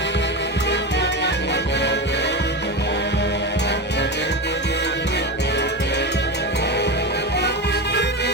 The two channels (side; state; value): both; normal; correlation 0.20